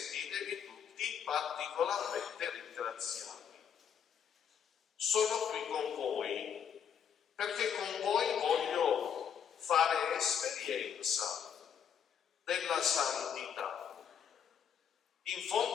tutti particolarmente ringraziati. Sono qui con voi perché con voi voglio fare esperienza della santità. In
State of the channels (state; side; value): quieter; right; 8.0 dB